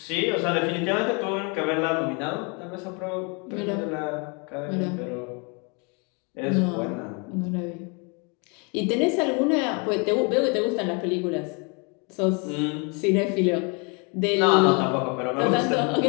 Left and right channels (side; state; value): right; quieter; 33.2 dB